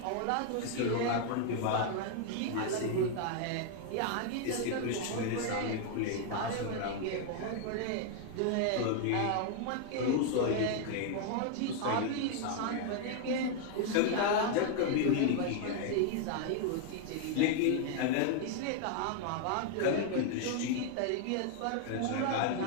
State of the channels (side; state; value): both; different; correlation 0.00